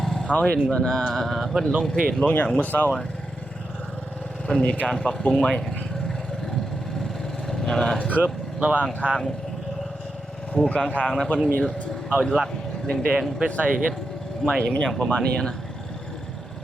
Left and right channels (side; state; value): both; normal; correlation 0.87